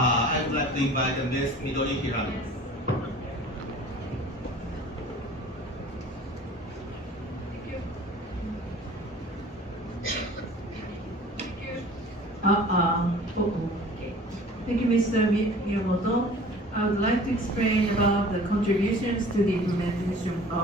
would like to invite Ms. Midori Hirano. Thank you, Mr. Miyamoto. I would like to explain about the contributions to the implementation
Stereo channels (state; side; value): normal; both; correlation 0.46